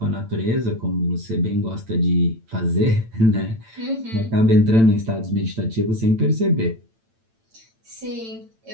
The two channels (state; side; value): late; left; 8.9 ms